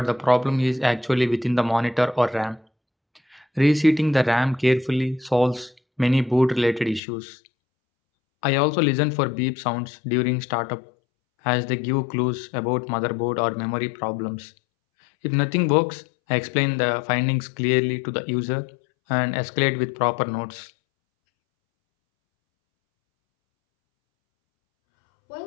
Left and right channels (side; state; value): right; drops out; at 7.0 s